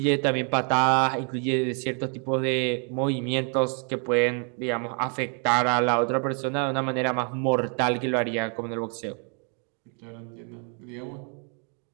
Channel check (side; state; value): left; quieter; 39.1 dB